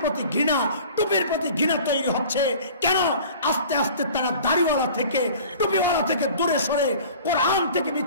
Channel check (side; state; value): both; inverted; correlation -0.44